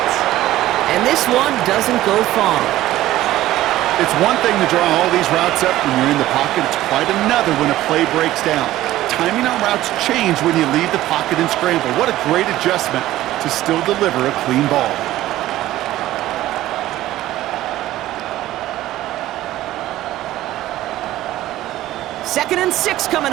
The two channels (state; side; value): quieter; left; 15.0 dB